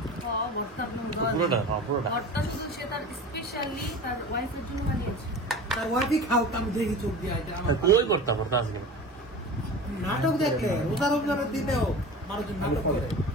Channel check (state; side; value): normal; both; correlation 0.34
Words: ভর্তা শুধু সে তার স্পেশালি তার ওয়াইফের জন্য বানিয়েছে। তার ওয়াইফই খাও আমি দেখি চোখ দিয়ে এটা আমার কই করতে ভর্তা আজকে নাটক দেখলে রোজা রমজানের দিনেও মানুষজন নাটক করে